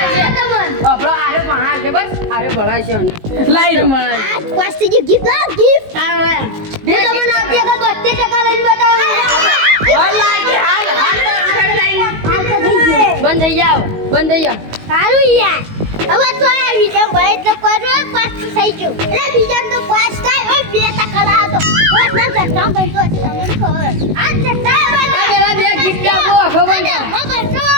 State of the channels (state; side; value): late; left; 19 ms